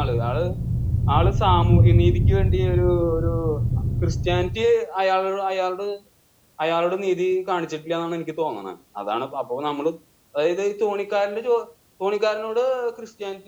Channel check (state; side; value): identical; both; correlation 1.00